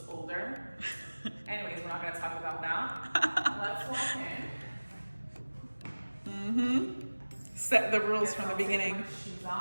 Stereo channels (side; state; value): both; inverted; correlation -1.00